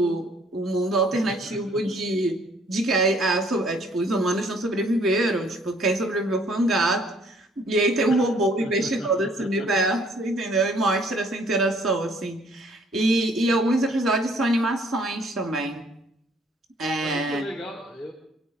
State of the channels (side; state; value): both; normal; correlation 0.61